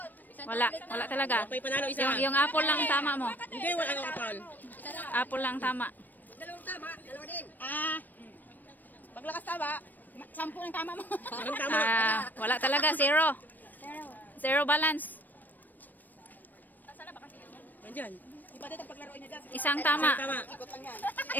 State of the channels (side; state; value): right; late; 0.088 ms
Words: Wala talaga. May panalo isa. Yung apple lang ang tama mo. Hindi, wala kang kapal. Apple lang ang tama. Dalawang tama, dalawa din. Paglakas tama. 10 ang tama mo. Anong tama? Wala talaga, zero. Zero balance. Andyan. Iba dito paglaruin niya dyan. Isang tama. Tama. Ikot lang yan.